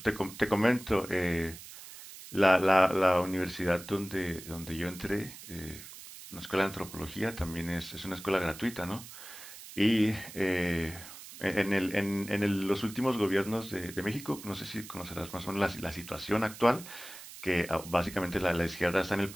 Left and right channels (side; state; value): right; noise; hiss, 15 dB below the sound